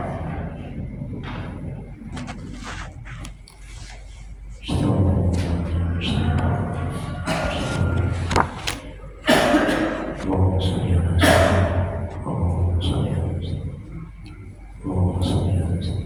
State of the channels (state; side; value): identical; both; correlation 1.00